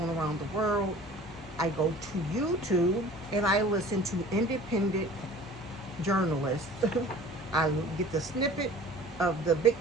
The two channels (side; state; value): both; normal; correlation 0.45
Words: around the world, I go to YouTube and I listen to independent journalists. I get the snippet of the big